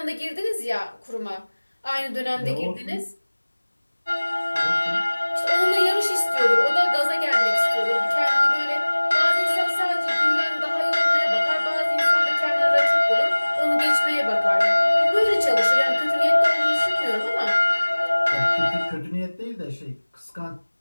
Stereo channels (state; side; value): inverted; both; correlation -1.00